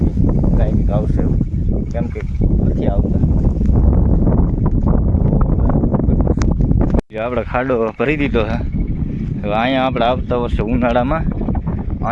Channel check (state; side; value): identical; both; correlation 1.00